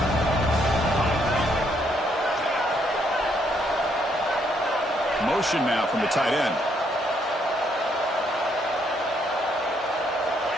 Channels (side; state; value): both; normal; correlation 0.72